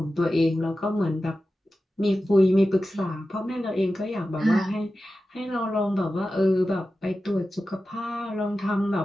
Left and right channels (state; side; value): normal; both; correlation 0.93